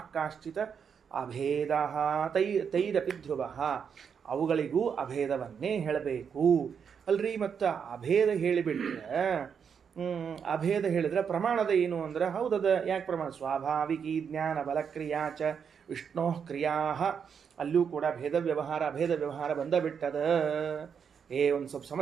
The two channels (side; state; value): left; quieter; 7.0 dB